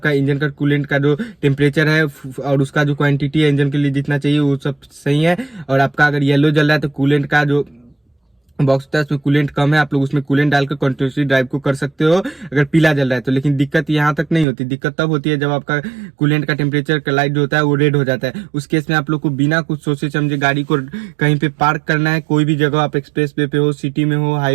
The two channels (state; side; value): drops out; left; at 14.5 s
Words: इंजन का कूलेंट का जो टेम्परेचर है और उसका जो क्वांटिटी है इंजन के लिए जितना चाहिए वो सब सही है। और आपका अगर येलो जल रहा है तो कूलेंट का जो बॉक्स होता है उसमें कूलेंट कम है, आप लोग उसमें कूलेंट डालकर कंटिन्यूसली ड्राइव को कर सकते हो अगर पीला जल रहा है तो। लेकिन दिक्कत यहाँ तक नहीं होती, दिक्कत तब होती है जब आपका कूलेंट का टेम्परेचर का लाइट जो होता है वो रेड हो जाता है। उस केस में आप लोग को बिना कुछ सोचे समझे गाड़ी को कहीं पे पार्क करना है, कोई भी जगह, आप एक्सप्रेस वे पे हो, सिटी में हो,